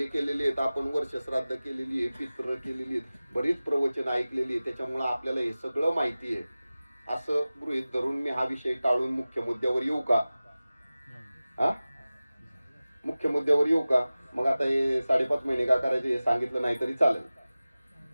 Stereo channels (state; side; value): inverted; both; correlation -0.97